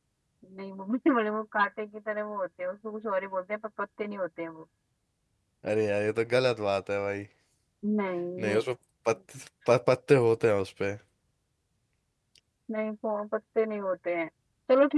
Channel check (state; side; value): identical; both; correlation 1.00